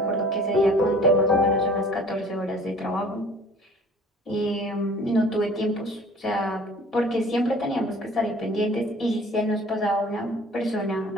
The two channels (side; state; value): both; normal; correlation 0.49